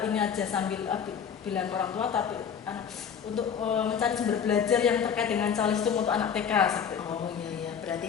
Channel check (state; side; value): quieter; right; 7.4 dB